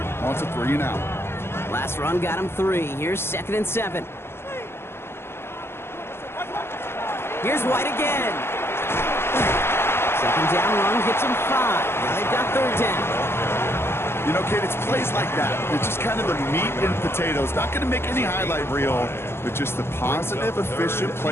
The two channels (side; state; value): right; late; 0.12 ms